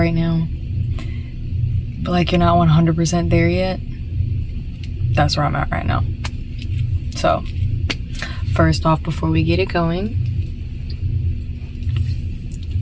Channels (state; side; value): identical; both; correlation 1.00